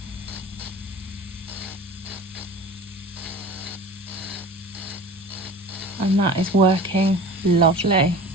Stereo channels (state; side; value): normal; both; correlation 0.38